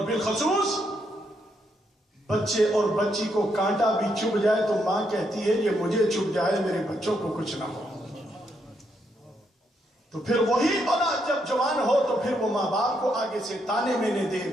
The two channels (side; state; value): both; normal; correlation 0.77